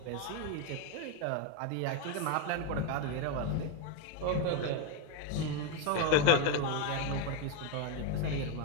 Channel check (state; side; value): different; both; correlation 0.02